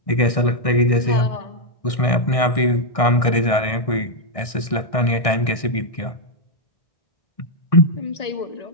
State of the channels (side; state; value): right; late; 1.6 ms